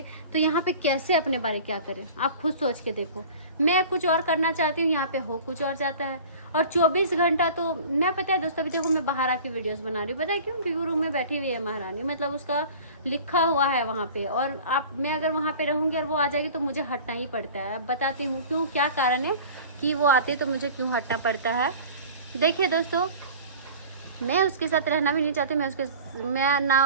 तो यहाँ पे कैसे अपने बारे क्या करें? आप खुद सोच के देखो। मैं कुछ और करना चाहती हूँ, यहाँ पे हो कुछ और जाता है। और 24 घंटा तो मैं, पता है दोस्तों, अभी देखो मैं बाहर आके वीडियोस बना रही हूँ। पता है क्यों? क्योंकि रूम में बैठी हुई है महारानी, मतलब उसका लिखा हुआ है वहाँ पे। और मैं अगर वहाँ पे रहूँगी और वो आ जाएगी तो मुझे हटना ही पड़ता है। अब बताती हूँ क्यों, क्या कारण है कि वो आते तो मुझे क्यों हटना पड़ता है। देखिए दोस्तों, मैं उसके साथ रहना भी नहीं चाहती, मैं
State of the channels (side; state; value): both; inverted; correlation -0.41